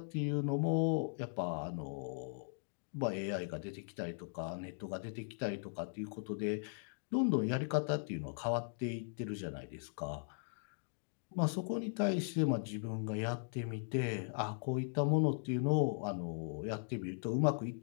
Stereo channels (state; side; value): silent; right; digital silence